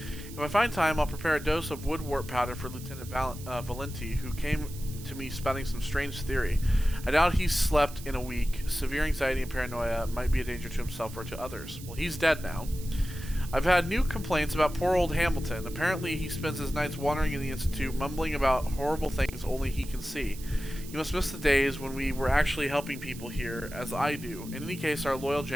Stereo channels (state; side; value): noise; right; hiss, 16 dB below the sound